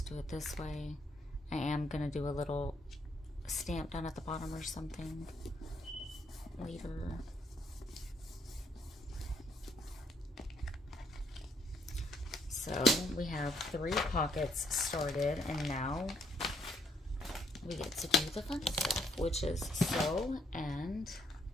do it this way. I am going to do a little stamp down at the bottom or something later. So we have 3 pockets started, and now we get to do the fun stuff, which is sew and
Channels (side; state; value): both; normal; correlation 0.72